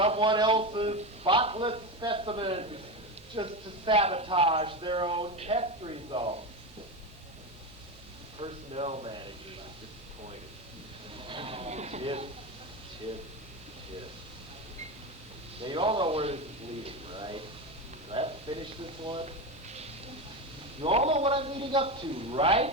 else's spotless specimens just to sabotage their own test results. personnel manager is disappointed. Tip, tip, tip. Now you all know where this is leading, right? Do I have to finish this one? You all know what I'm leading up to,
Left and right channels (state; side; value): normal; both; correlation 0.18